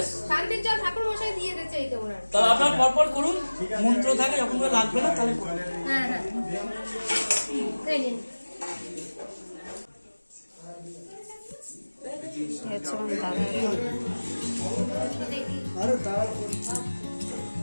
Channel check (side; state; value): both; inverted; correlation -1.00